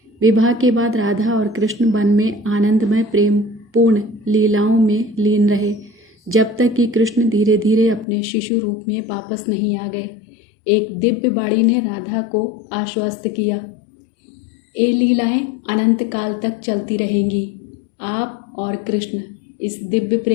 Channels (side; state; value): right; drops out; at 8.1 s